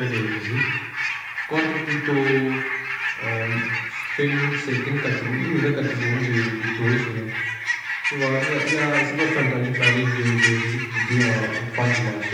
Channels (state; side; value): identical; both; correlation 1.00